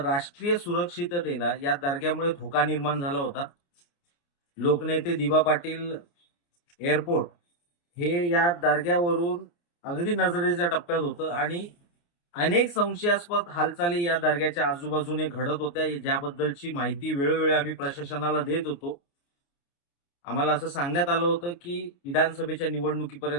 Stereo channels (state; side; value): late; right; 29 ms